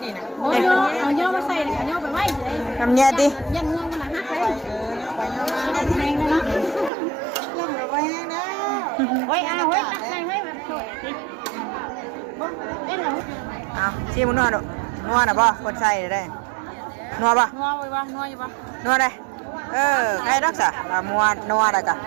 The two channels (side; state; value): left; drops out; at 6.9 s